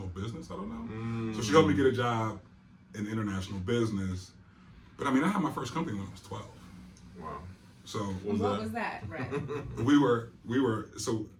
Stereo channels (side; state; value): both; identical; correlation 1.00